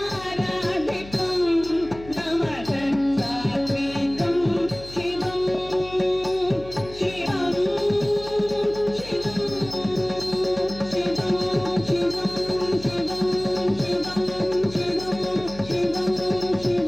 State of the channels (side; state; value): left; noise; hum, 17 dB below the sound